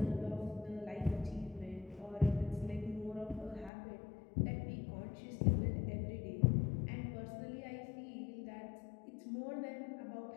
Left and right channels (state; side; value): drops out; right; at 3.7 s